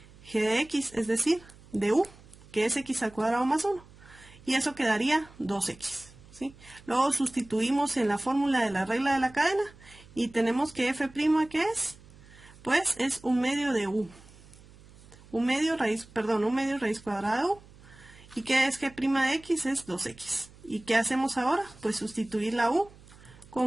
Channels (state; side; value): noise; right; hum, 23 dB below the sound